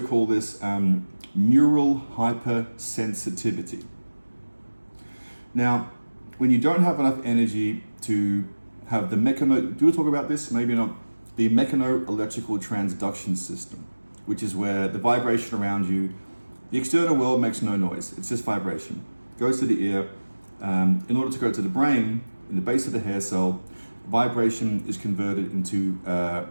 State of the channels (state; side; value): inverted; both; correlation -1.00